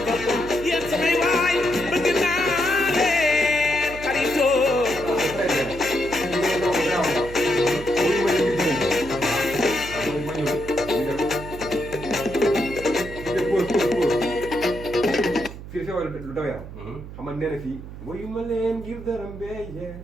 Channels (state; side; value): noise; right; hum, 12 dB below the sound